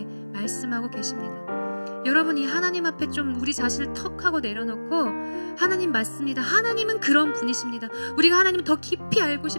말씀하고 계십니다. 여러분, 이 하나님 앞에 좀 우리 자신을 턱 하고 내려놓고 하나님 맞습니다. 하나님은 그런 분이십니다. 우리가 하나님을 더 깊이 알고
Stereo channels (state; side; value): inverted; both; correlation -1.00